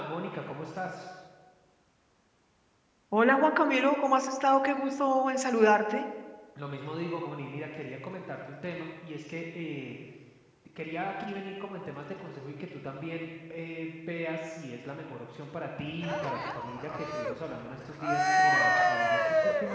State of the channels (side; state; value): both; identical; correlation 1.00